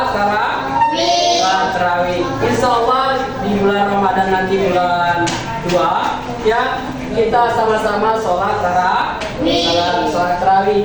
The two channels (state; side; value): identical; both; correlation 1.00